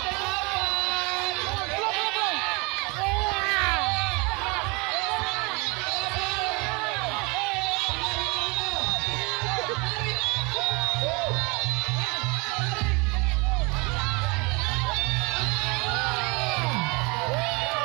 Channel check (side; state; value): left; quieter; 28.3 dB